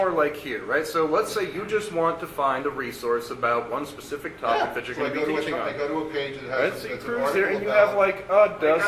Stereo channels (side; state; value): both; identical; correlation 1.00